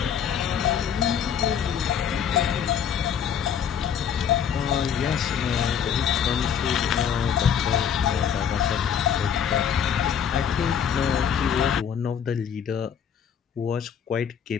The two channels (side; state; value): right; quieter; 8.1 dB